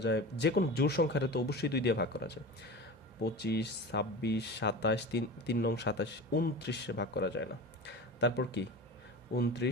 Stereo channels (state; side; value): normal; both; correlation 0.32